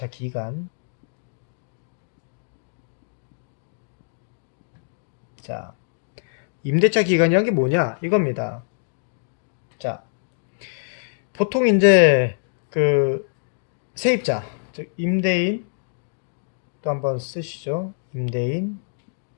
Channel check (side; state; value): right; silent; digital silence